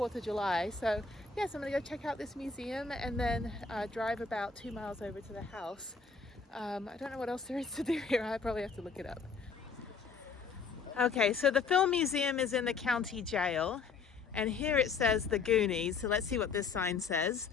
of July. So yes, I'm gonna go check out this museum and then drive about 2 miles over to the house. I don't know what else there is to do here. I probably have to look it up. Okay, so the film museum is in the county jail. And here it says the Goonies. So let's see what this sign says.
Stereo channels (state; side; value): quieter; right; 5.0 dB